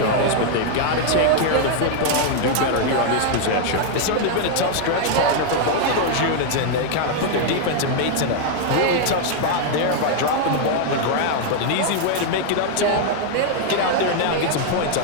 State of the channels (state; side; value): different; both; correlation 0.00